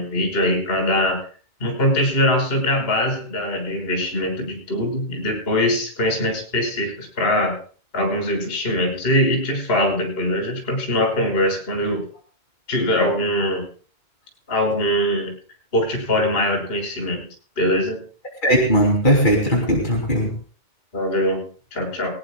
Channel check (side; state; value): right; late; 2.2 ms